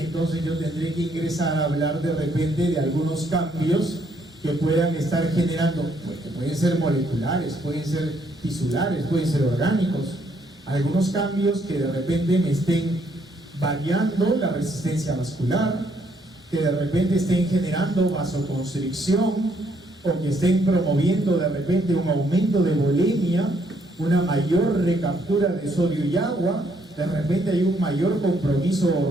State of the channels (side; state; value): both; normal; correlation 0.70